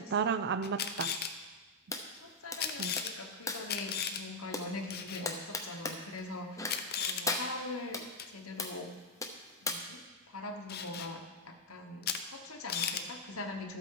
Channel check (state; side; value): normal; both; correlation -0.02